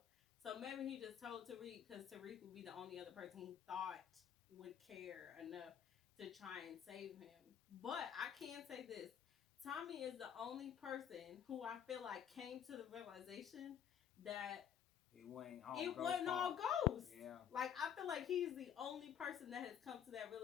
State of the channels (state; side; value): quieter; right; 8.9 dB